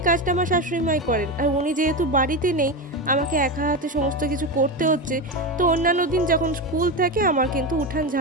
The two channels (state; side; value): normal; both; correlation 0.17